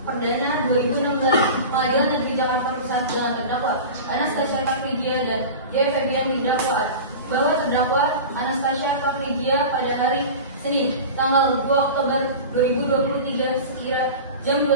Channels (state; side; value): inverted; both; correlation -0.32